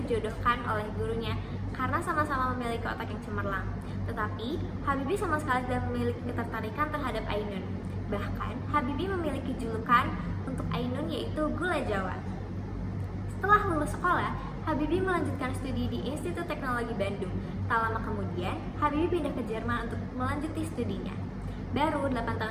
oleh gurunya karena sama-sama memiliki otak yang cemerlang. Tetapi, Habibie sama sekali tidak memiliki ketertarikan terhadap Ainun. Bahkan, Habibie memiliki julukan untuk Ainun yaitu Gula Jawa. Setelah lulus sekolah, Habibie melanjutkan studi di Institut Teknologi Bandung. Tak lama kemudian, Habibie pindah ke Jerman untuk melanjuti studinya. Baru 8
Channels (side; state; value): both; identical; correlation 1.00